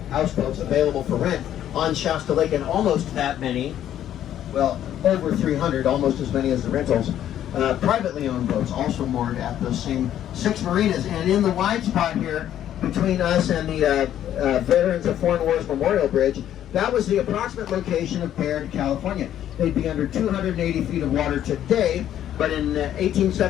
houseboats available for rent on Shasta Lake, and almost that many, well, over 300, almost as many as the rentals, privately owned boats also moored at those same 6 marinas. And in the wide spot here, between us and the Veterans of Foreign Wars Memorial Bridge, that was the approximate location of Baird, California. They'd be under 280 feet of water today, but in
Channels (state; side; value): quieter; right; 11.1 dB